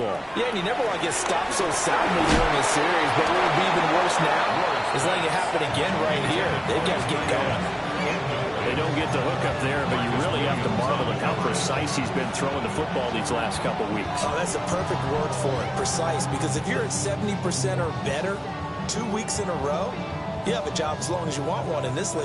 Yeah, and you never want to get stopped so soundly during a series, but what would be even worse now is letting it happen again right here. They've got to get going. They don't get the hook up there, but you really have to marvel at how precise he's been throwing the football these last couple weeks. Oh, that's a perfect word for it, precise, because if you're at 70% or better 2 weeks in a row, you have a job as long as you want one in this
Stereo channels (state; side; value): identical; both; correlation 1.00